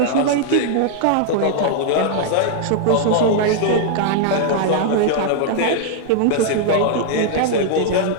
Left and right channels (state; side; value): different; both; correlation -0.01